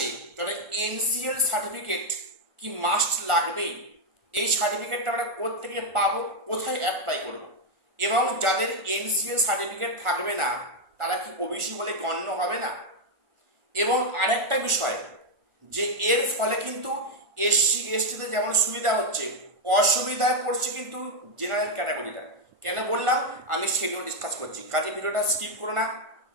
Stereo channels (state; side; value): late; left; 1.4 ms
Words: তাদের এনসিএল সার্টিফিকেট কি মাস্ট লাগবেই। এই সার্টিফিকেটটা আমরা কোত্থেকে পাবো, কোথায় অ্যাপ্লাই করব, এবং যাদের এনসিএল সার্টিফিকেট থাকবে না তারা কি ওবিসি বলে গণ্য হবে না। এবং আরেকটা বিষয় যে এর ফলে কিন্তু এসসি এসটিতে যেমন সুবিধা হচ্ছে, অসুবিধায় পড়ছে কিন্তু জেনারেল ক্যাটাগরিটা। কেন বললাম আমি সেগুলো ডিসকাস করছি, কাজে ভিডিওটা স্কিপ করো না,